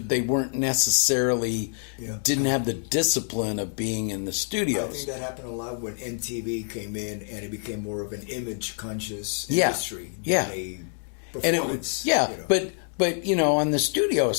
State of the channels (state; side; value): silent; right; 61 dB below the other